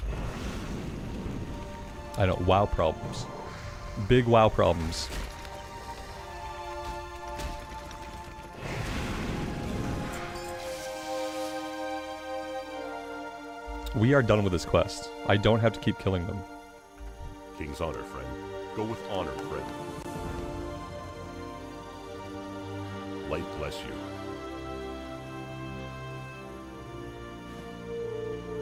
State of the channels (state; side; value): identical; both; correlation 1.00